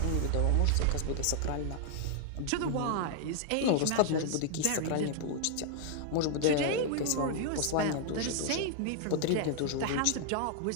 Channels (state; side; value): different; both; correlation 0.00